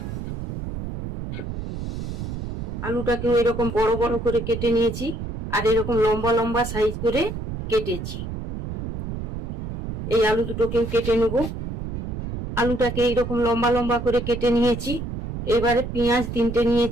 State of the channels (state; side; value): noise; right; rumble, 5 dB below the sound